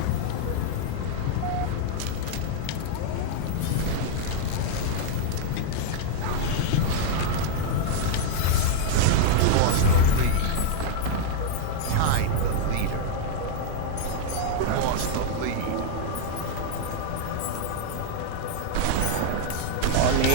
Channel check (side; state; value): both; different; correlation 0.00